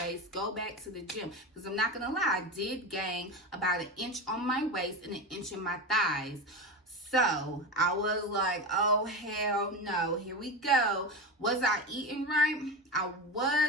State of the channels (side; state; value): both; normal; correlation 0.22